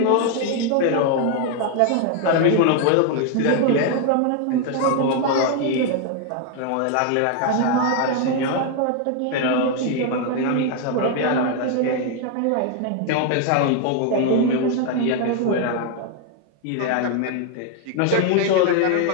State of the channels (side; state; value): both; different; correlation 0.01